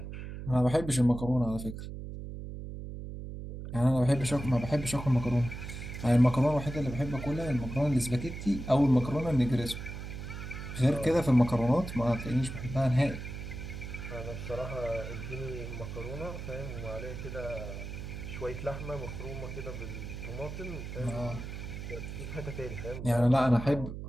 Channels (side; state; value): right; noise; hum, 8 dB below the sound